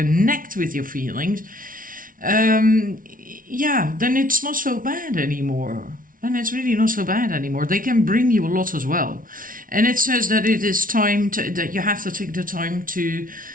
with your feelings, yeah, then it's not so bad anymore. And it's really not so bad anymore. They can bring you a lot as well. And it says that it is time that you have to take the time to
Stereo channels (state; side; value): late; left; 0.40 ms